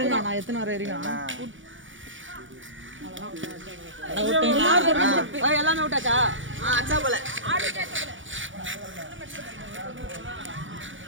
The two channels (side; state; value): left; late; 0.56 ms